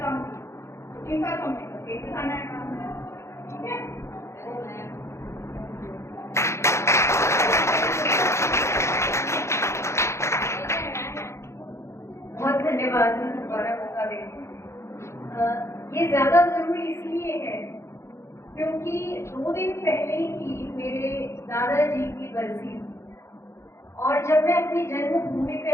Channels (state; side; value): late; right; 0.13 ms